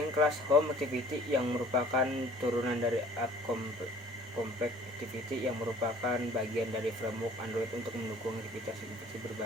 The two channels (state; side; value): normal; both; correlation 0.51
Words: kelas home activity yang merupakan turunan dari app compact activity yang merupakan bagian dari framework Android untuk mendukung aktivitas